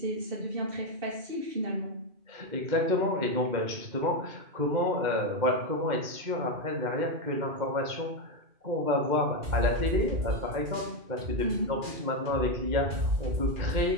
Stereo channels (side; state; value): left; late; 2.1 ms